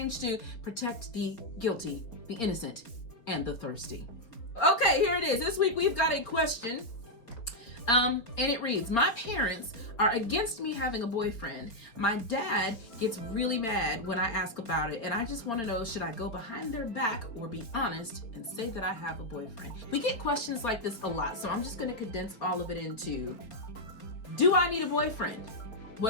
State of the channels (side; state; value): right; late; 4.3 ms